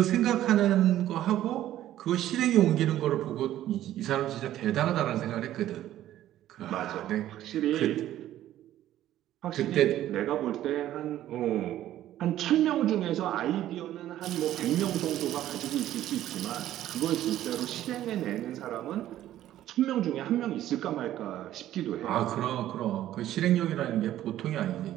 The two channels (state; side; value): quieter; left; 13.0 dB